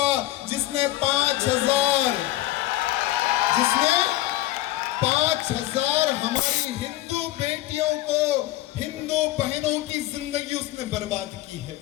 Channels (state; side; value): quieter; right; 15.8 dB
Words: जिसने 5,000 हमारी हिंदू बेटियों को, हिंदू बहनों की जिंदगी उसने बर्बाद की है।